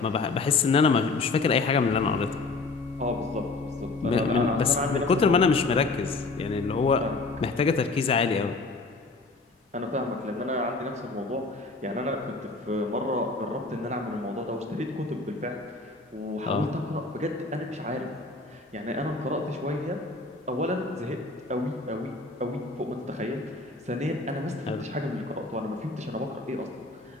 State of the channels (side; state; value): right; quieter; 3.6 dB